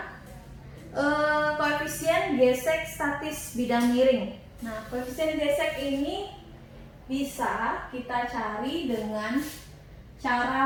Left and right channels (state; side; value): identical; both; correlation 1.00